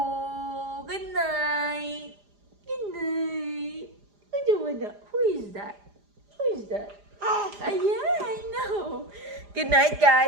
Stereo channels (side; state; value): left; late; 4.9 ms